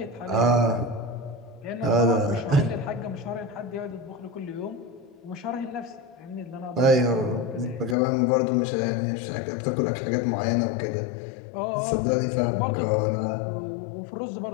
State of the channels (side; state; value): right; drops out; at 8.0 s